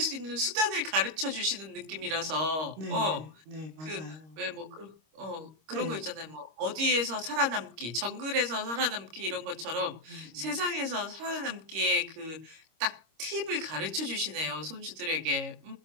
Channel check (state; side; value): late; left; 26 ms